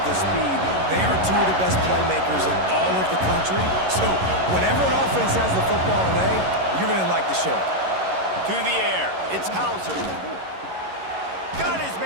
the speed. They are two of the best playmakers in all of the country. So whenever an offense has the football today, you're going to like the show. To the air, it's Hauser. Got his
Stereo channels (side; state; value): left; late; 11 ms